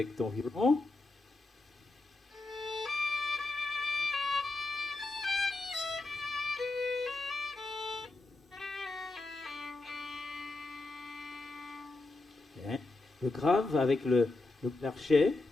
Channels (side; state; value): right; quieter; 3.1 dB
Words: ton violon. Bien. Le grave avec le l'archet,